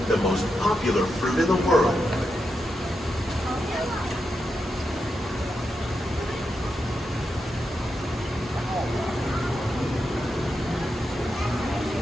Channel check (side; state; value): both; normal; correlation 0.86